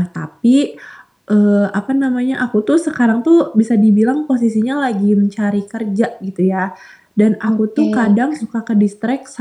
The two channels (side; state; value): both; identical; correlation 1.00